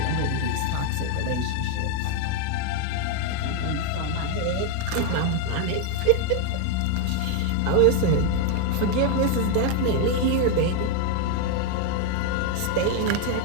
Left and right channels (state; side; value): different; both; correlation 0.01